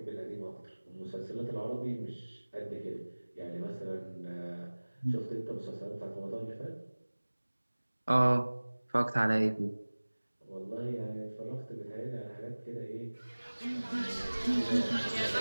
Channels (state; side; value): inverted; both; correlation -1.00